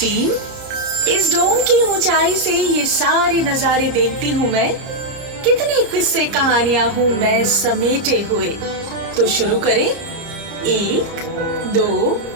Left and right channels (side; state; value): left; late; 30 ms